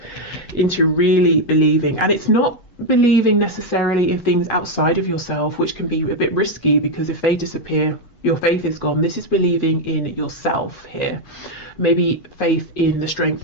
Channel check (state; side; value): late; right; 8.2 ms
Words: into really believing. And it's not believing necessarily in things outside of yourself, which can be a bit risky, because if they disappear, your faith is gone. This is believing in yourself here. Maybe faith in the